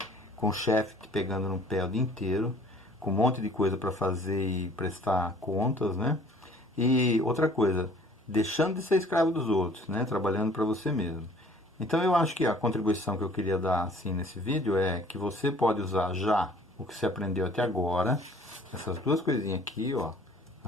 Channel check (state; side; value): normal; both; correlation 0.54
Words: com o chefe te pegando no pé o dia inteiro, com um monte de coisa para fazer e prestar contas, né? E outra coisa, deixando de ser escravo dos outros, né? Trabalhando para você mesmo. Então eu acho que a contribuição que eu queria dar assim nesse vídeo é que você pode usar já o que você aprendeu até agora, essas duas coisinhas aqui, ó,